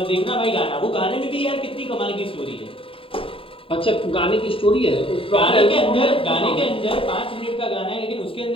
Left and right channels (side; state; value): right; late; 0.26 ms